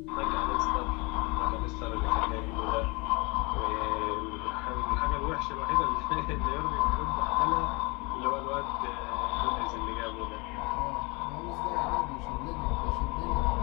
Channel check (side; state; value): right; quieter; 27.7 dB